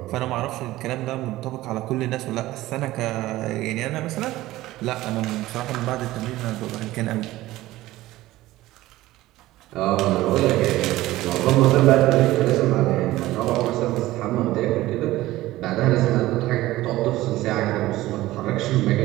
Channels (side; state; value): left; quieter; 16.8 dB